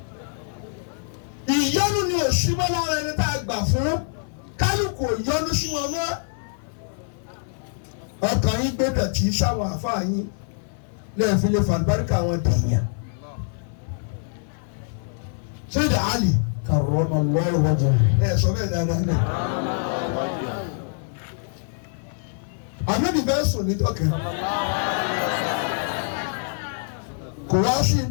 ìyọ́nú ni òṣìmọ́ lára ẹni tá a gbà fún kálukú ìyọ́nú sí wọn mọ́. ọkàn yín gbé dọ̀tí sáwọn àfáà yín lẹ́yìn fi lè fàlùbáríkà wọn dèèyàn. Sayyid Ali karramallahu wajhahu. Sọ bẹ́ẹ̀ dáadáa náà. Ànábì bẹ́ẹ̀ sùn ní dọ́kẹ́. Kò wá sí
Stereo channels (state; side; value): silent; right; 58 dB below the other